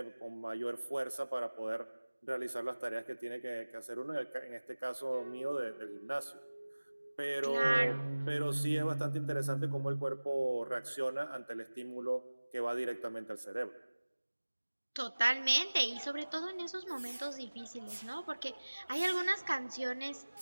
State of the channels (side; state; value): both; inverted; correlation -1.00